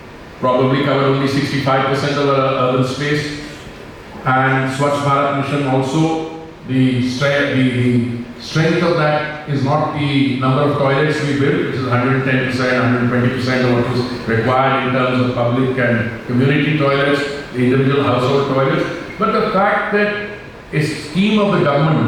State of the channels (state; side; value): identical; both; correlation 1.00